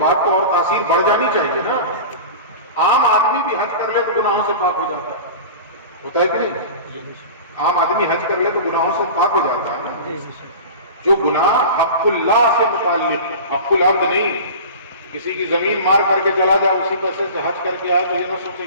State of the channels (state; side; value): inverted; both; correlation -0.34